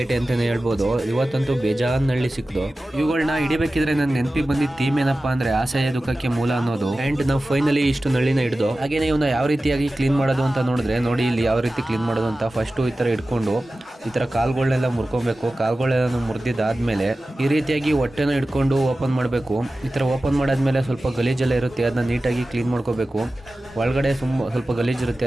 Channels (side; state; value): both; normal; correlation 0.95